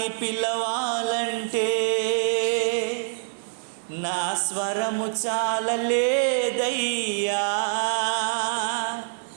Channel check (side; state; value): left; silent; 61 dB below the other